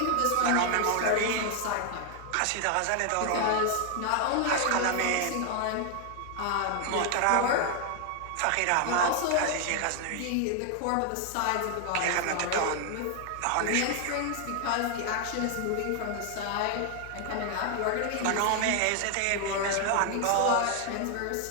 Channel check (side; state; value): both; different; correlation 0.00